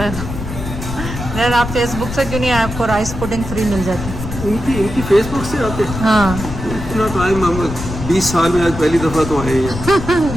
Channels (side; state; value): left; noise; rumble, 8 dB below the sound